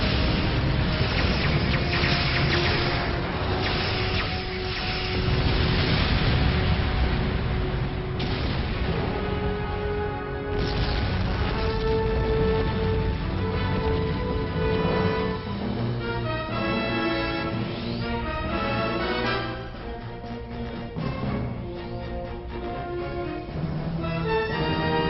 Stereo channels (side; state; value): both; identical; correlation 1.00